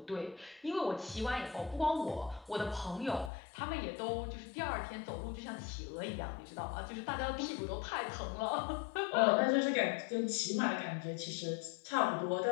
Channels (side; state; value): right; drops out; at 3.3 s